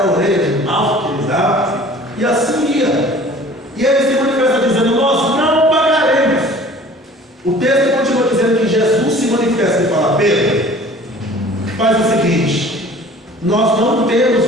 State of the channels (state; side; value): normal; both; correlation 0.47